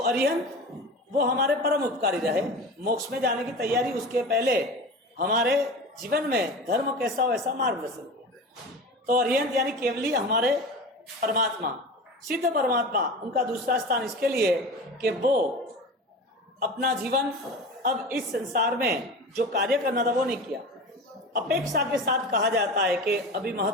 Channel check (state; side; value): normal; both; correlation 0.32